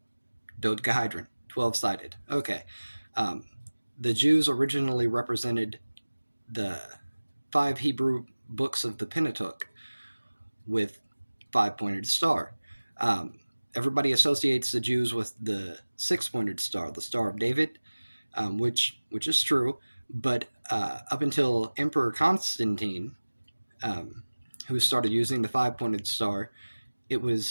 Dodecahedron, 12 sided. Okay. Um, the Jews originally represented the 5 Hebrew books of the Pentateuch with 5 pointed star. Everybody associates the Jews with the 6 pointed star, the Star of David, which is true, But up until Emperor Constantine, who started using the five-pointed star,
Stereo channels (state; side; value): inverted; both; correlation -1.00